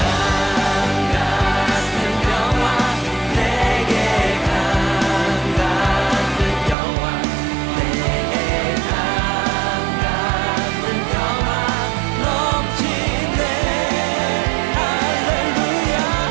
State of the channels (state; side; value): drops out; left; at 6.8 s